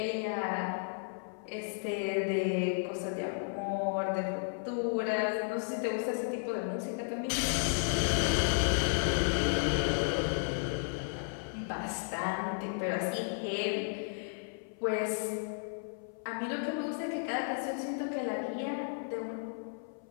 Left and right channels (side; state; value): right; silent; 55 dB below the other